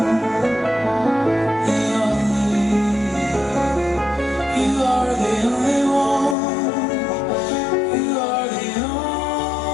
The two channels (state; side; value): drops out; right; at 6.4 s